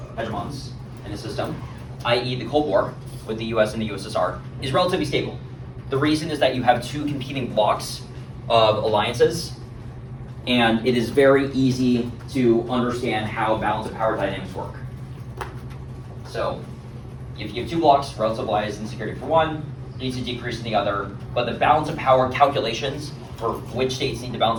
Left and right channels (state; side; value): identical; both; correlation 1.00